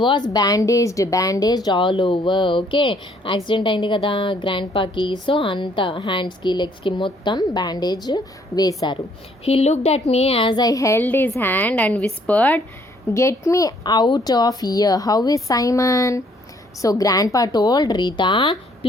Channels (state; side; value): normal; both; correlation 0.65